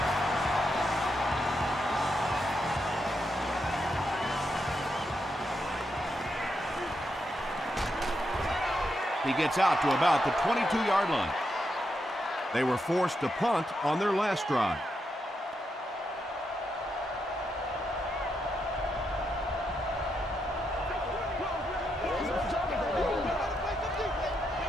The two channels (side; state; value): both; normal; correlation 0.82